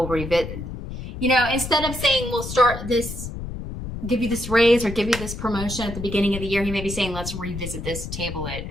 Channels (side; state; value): left; noise; rumble, 8 dB below the sound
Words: revisit, you know, instead of saying we'll start this, give you this raise or give you this promotion at the beginning of the year, he may be saying, let's revisit this, table it.